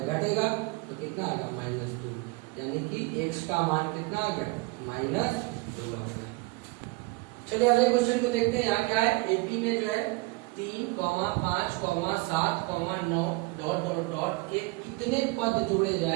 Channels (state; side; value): quieter; left; 23.8 dB